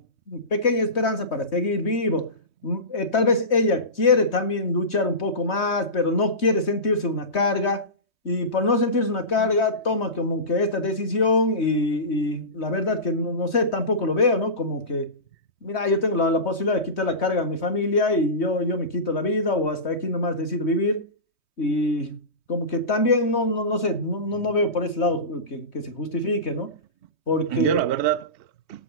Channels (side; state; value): right; late; 3.2 ms